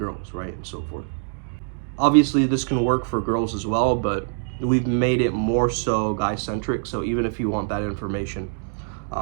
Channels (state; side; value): silent; left; digital silence